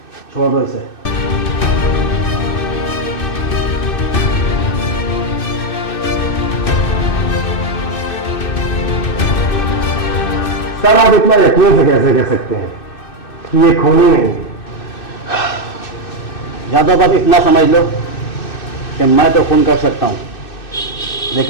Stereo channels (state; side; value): late; right; 2.6 ms